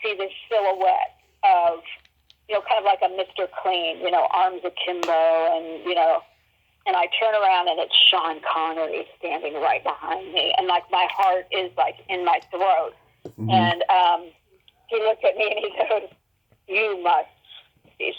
this silhouette of kind of like a Mr. Clean, arms akimbo, and and I turn around, and it's Sean Connery standing right behind me, and like my heart is like in my throat. Mm-hmm. And he looked at me and he goes, "You must be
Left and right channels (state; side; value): identical; both; correlation 1.00